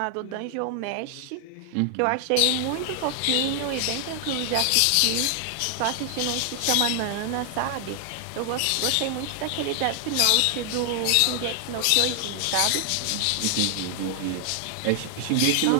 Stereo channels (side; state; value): both; different; correlation 0.00